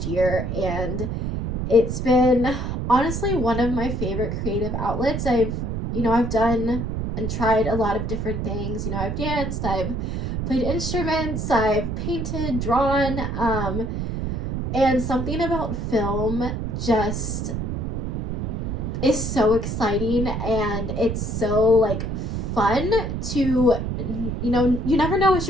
year, and it's been honestly one of my favorite creative outlets. I've done and tried a lot of different things. You know, I've danced, I've played instruments, I've painted, drawn, and something about film just is so exciting, and it's so like fun to, you know, you never know what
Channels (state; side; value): noise; right; rumble, 2 dB below the sound